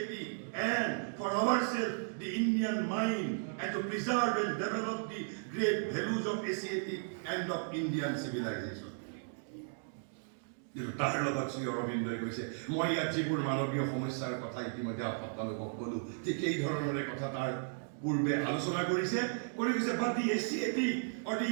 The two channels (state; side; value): silent; left; digital silence